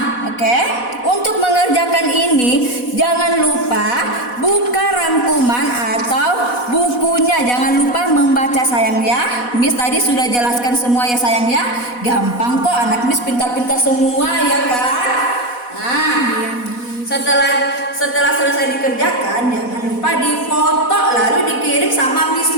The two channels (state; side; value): late; right; 4.1 ms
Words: oke. Untuk mengerjakan ini, jangan lupa buka rangkuman atau bukunya. Jangan lupa membaca sayang ya. Miss tadi sudah jelaskan semua ya sayang ya. Gampang kok, anak Miss pintar-pintar semua ya kan. Nah, setelah selesai dikerjakan, jangan lupa difoto lalu dikirim sama Miss